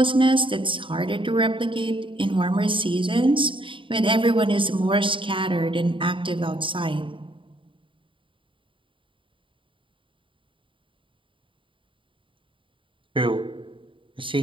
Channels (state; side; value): late; left; 0.25 ms